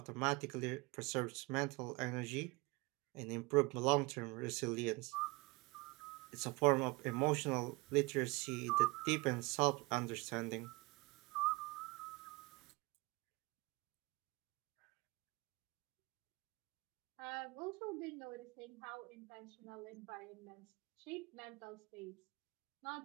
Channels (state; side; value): quieter; left; 24.7 dB